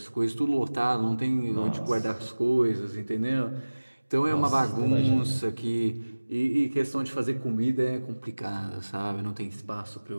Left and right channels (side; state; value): both; inverted; correlation -1.00